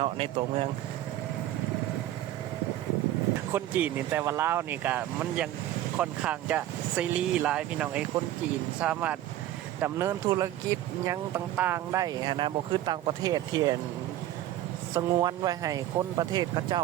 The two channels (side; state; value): left; quieter; 13.5 dB